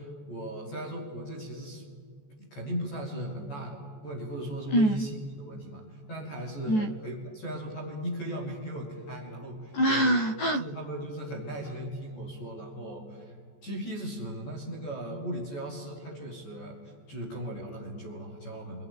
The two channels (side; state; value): right; late; 14 ms